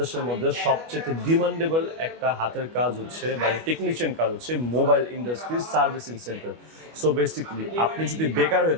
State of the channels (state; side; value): late; left; 25 ms